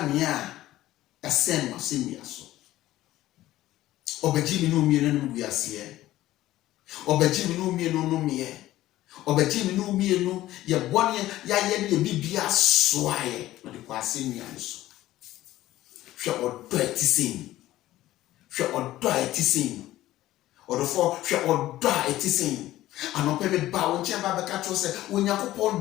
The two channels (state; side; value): quieter; right; 15.2 dB